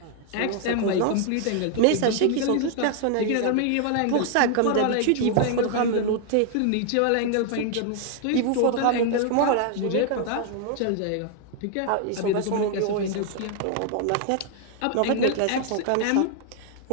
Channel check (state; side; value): different; both; correlation 0.00